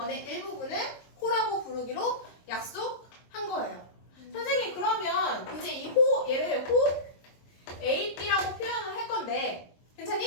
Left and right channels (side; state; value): right; late; 22 ms